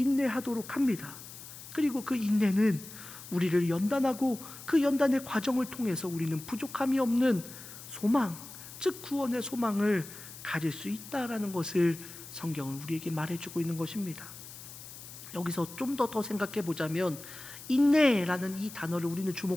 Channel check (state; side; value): noise; left; hiss, 14 dB below the sound